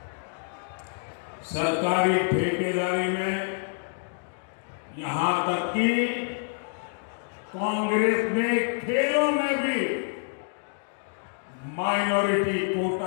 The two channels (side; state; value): right; silent; digital silence